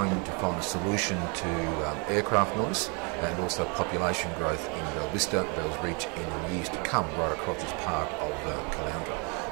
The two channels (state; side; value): quieter; left; 33.8 dB